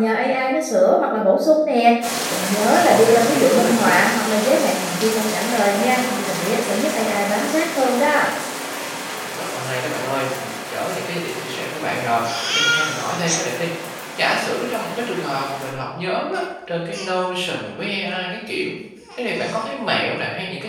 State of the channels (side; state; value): both; identical; correlation 1.00